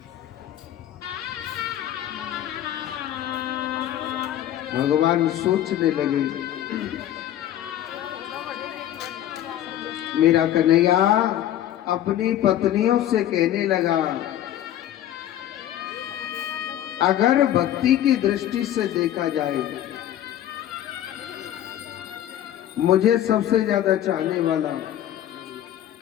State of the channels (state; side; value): quieter; right; 12.0 dB